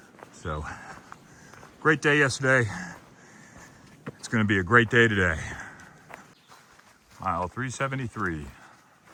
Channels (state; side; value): identical; both; correlation 1.00